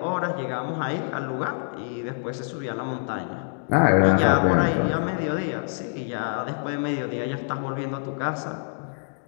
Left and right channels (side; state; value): right; silent; digital silence